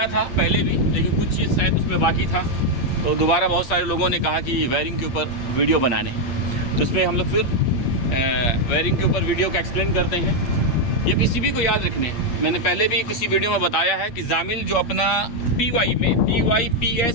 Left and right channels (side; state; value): right; late; 8.5 ms